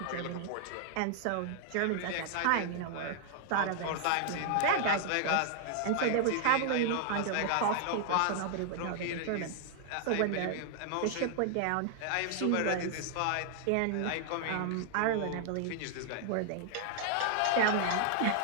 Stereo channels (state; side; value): different; both; correlation 0.00